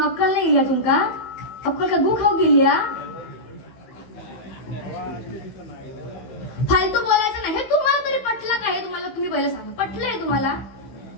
नाही गेली अजून का. अक्कल का गु खाऊ गेली. फालतू बोलायचं नाही. हे तुम्हाला तरी पटलं का? हे तुम्हाला तुम्ही पहिलं सांगा, पटलंय तुम्हाला?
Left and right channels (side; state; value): right; late; 15 ms